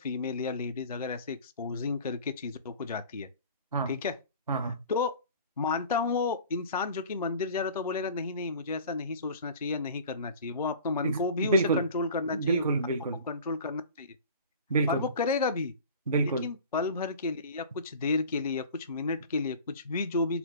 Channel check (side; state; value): both; inverted; correlation -0.42